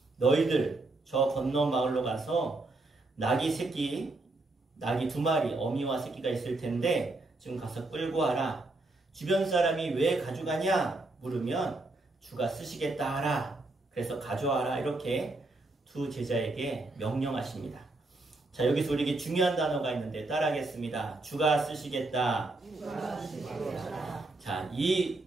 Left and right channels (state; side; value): quieter; left; 3.1 dB